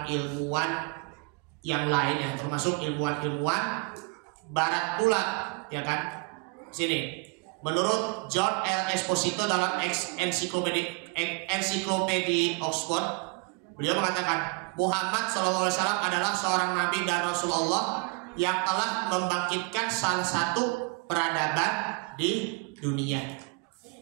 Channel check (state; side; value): quieter; left; 31.1 dB